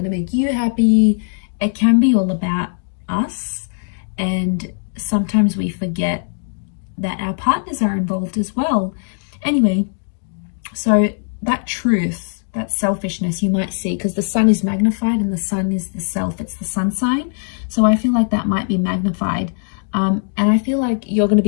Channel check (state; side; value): silent; right; digital silence